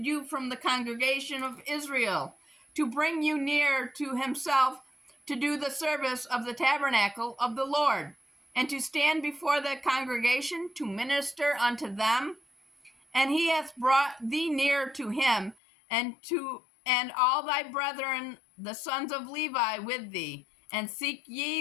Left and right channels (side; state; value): right; drops out; at 15.6 s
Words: you from the congregation of Israel, to bring you near to himself, to do the service of the tabernacle of the Lord, and to stand before the congregation to minister unto them? And he hath brought thee near to him, and all thy brethren, the sons of Levi, with thee. And seek